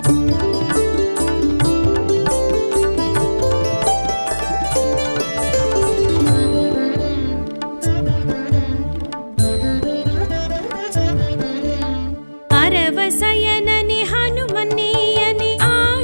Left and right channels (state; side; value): inverted; both; correlation -1.00